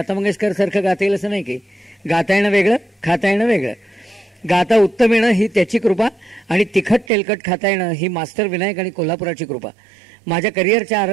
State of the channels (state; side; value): drops out; left; at 7.1 s